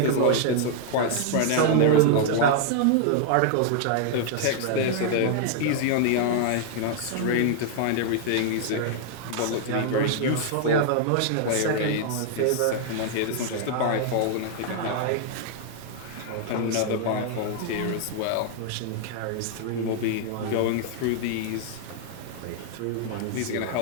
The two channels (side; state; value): both; different; correlation 0.00